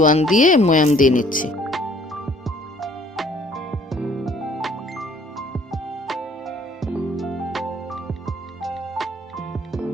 দিয়ে ময়াম দিয়ে নিচ্ছি।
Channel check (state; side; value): normal; both; correlation 0.58